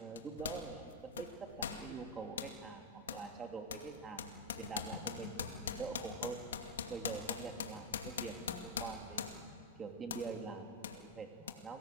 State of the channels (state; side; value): normal; both; correlation -0.01